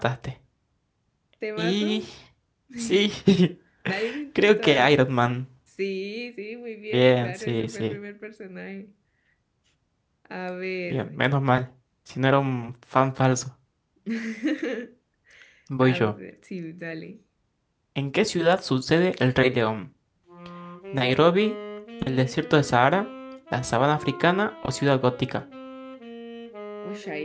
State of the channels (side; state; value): both; identical; correlation 1.00